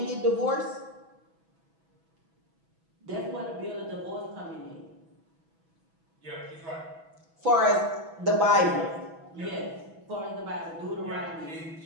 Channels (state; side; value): late; left; 6.1 ms